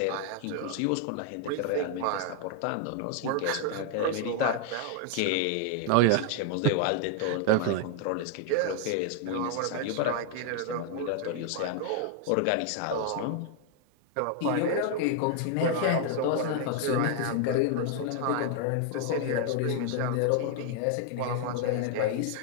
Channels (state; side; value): different; both; correlation 0.00